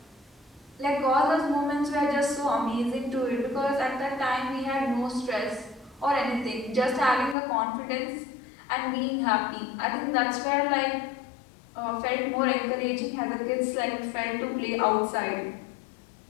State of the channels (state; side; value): drops out; right; at 7.4 s